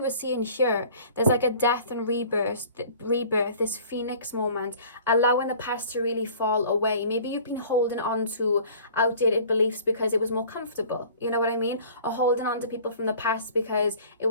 seeing here. There's like a death and rebirth, this phoenix moment, allowing the past to really fall away. Maybe you've been holding on to outdated beliefs because it was more comfortable. You know what I mean? Or holding on to people from the past because it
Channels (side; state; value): both; inverted; correlation -0.48